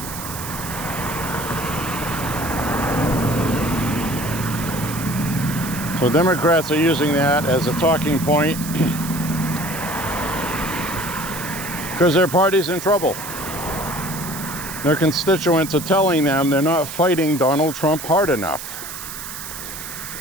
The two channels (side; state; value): right; noise; hiss, 9 dB below the sound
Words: So Democrats are using that as a talking point because their party's in trouble. Their constituents are telling them they're not fighting Donald Trump hard enough.